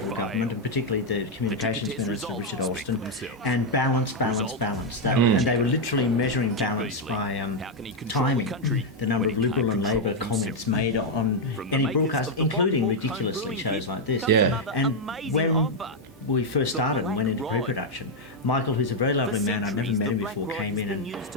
government, and particularly the Communications Minister, Richard Alston, and balance. And they were literally measuring balance by timing the number of Liberal and Labor comments made on any broadcast, including ridiculously shows like this. Yeah. And when we first started and went into pre-production, Michael, who's a very lovely man, I'd never met him before, came in and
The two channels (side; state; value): both; normal; correlation 0.00